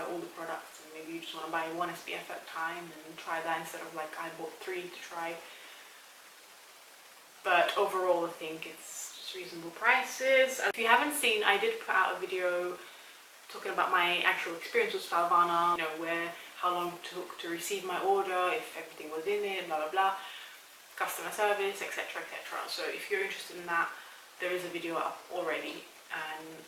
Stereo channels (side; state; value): both; identical; correlation 1.00